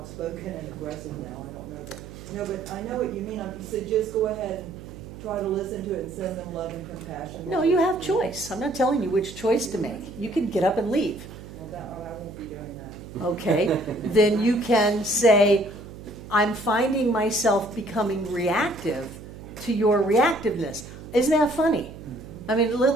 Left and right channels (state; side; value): noise; right; hum, 14 dB below the sound